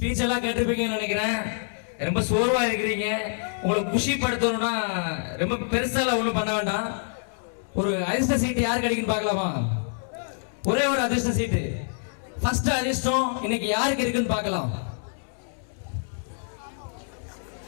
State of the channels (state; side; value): silent; right; 61 dB below the other